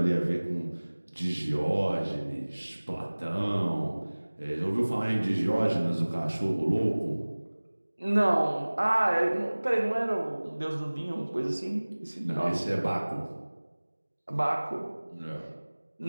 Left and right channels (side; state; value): both; inverted; correlation -1.00